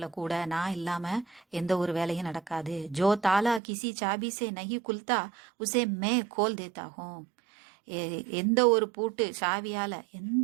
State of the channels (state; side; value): drops out; left; at 3.6 s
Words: கூட நான் இல்லாம எந்த ஒரு வேலையும் நடக்காது. ஜோ தாலா கிசி சாபி சே நஹி குல்தா உசே மே கோல் தேத்தா ஹூம். எந்த